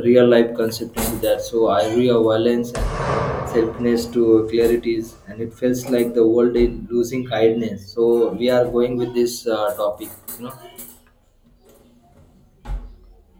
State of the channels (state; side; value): identical; both; correlation 1.00